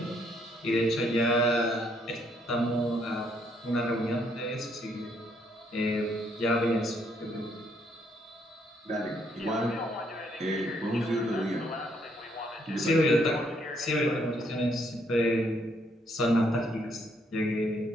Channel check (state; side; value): normal; both; correlation 0.71